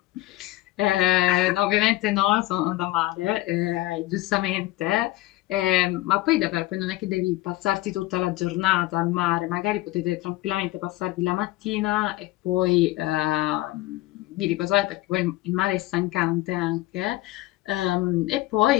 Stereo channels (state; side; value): quieter; right; 17.4 dB